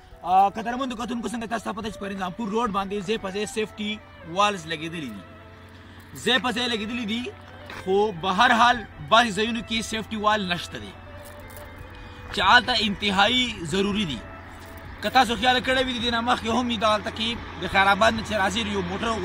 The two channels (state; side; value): identical; both; correlation 1.00